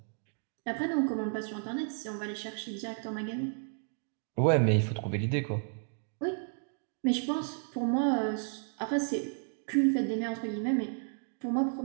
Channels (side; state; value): left; silent; 56 dB below the other